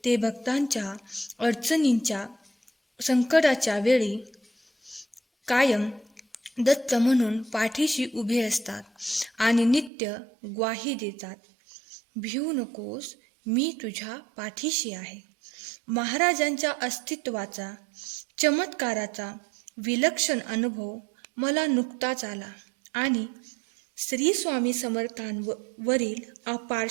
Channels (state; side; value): drops out; left; at 9.9 s